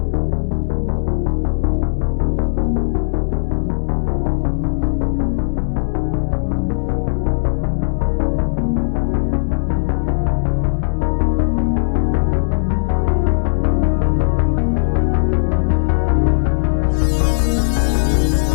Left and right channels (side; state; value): right; silent; digital silence